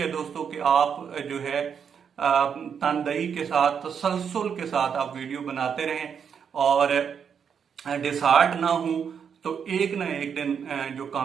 दोस्तों कि आप जो है तनदही के साथ, तसलसल के साथ आप वीडियो बनाते रहें, और डिसहार्ट ना हो, तो एक ना एक दिन जो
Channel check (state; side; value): quieter; left; 7.2 dB